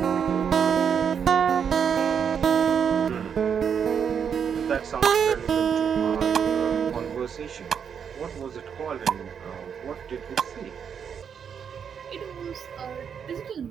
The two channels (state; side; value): quieter; left; 7.4 dB